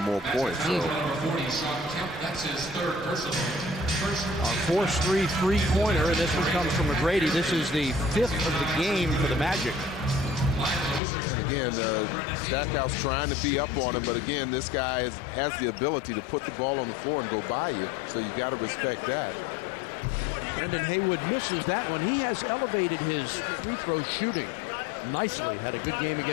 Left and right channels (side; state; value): right; drops out; at 11.0 s